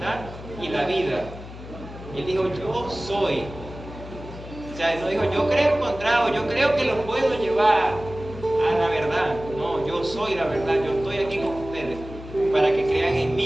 y la vida. Él dijo, yo soy. O sea, él no dijo, yo creo encontrado, yo creo que los puedo llevar a la verdad. No, yo soy la verdad, yo estoy aquí con ustedes para que crean en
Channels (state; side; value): noise; left; hum, 13 dB below the sound